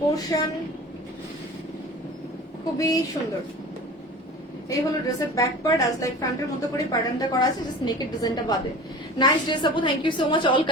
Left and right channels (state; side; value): normal; both; correlation 0.38